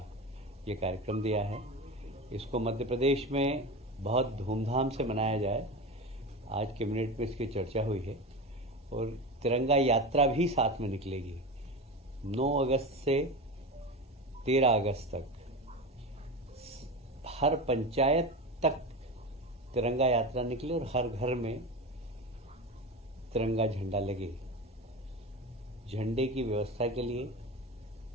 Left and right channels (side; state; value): both; normal; correlation 0.25